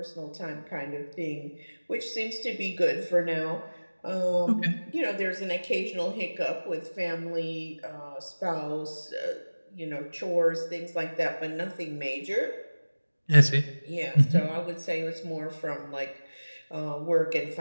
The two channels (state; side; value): inverted; both; correlation -1.00